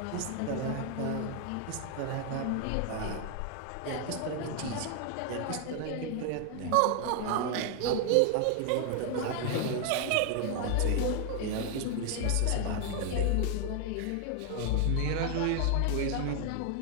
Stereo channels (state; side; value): different; both; correlation 0.00